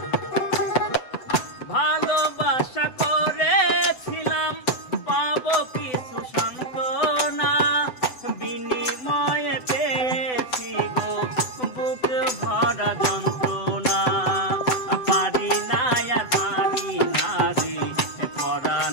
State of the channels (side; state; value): right; late; 7.9 ms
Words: ভালোবাসা করেছিলাম পাবো কিছু সান্ত্বনা, বিনিময়ে পেয়েছি গো বুক ভরা যন্ত্রণা। পারি না আর পারি না রে